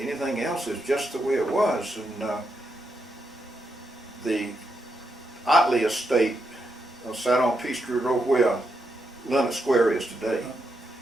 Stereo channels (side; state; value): both; normal; correlation 0.83